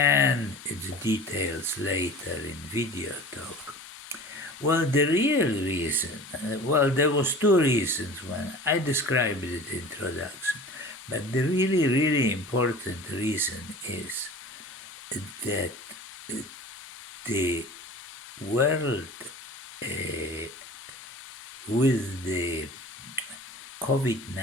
its details later in Video Talk. Well, the real reason, there was two reasons when I described it in introduction, but the really important reason is that the world with the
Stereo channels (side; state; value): both; normal; correlation 0.40